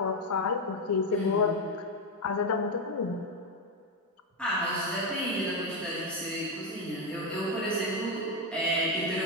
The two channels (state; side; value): normal; both; correlation 0.06